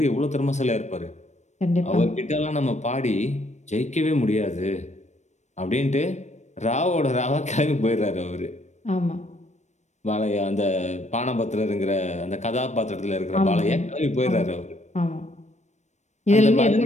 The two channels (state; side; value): late; right; 0.34 ms